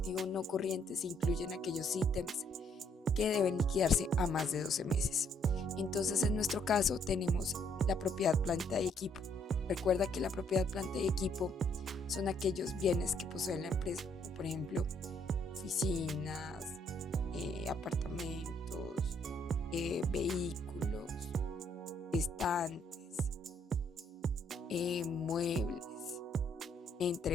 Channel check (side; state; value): both; normal; correlation 0.69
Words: no corriente se incluyen aquellos ítems que deben liquidarse a más de 12 meses. Entonces, en nuestro caso, tenemos la propiedad, planta y equipo. Recuerda que la propiedad, planta y equipo son aquellos bienes que posee la empresa, como por ejemplo, oficinas, apartamentos, vehículos, estantes, muebles,